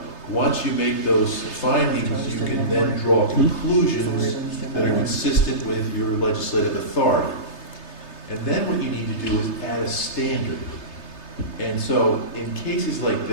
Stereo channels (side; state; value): right; late; 3.3 ms